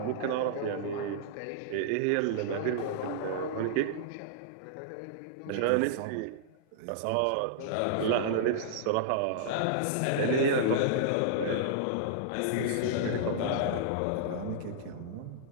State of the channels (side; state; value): both; different; correlation -0.02